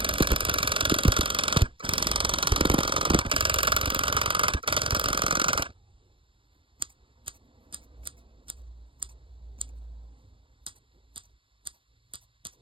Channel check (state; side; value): late; left; 0.25 ms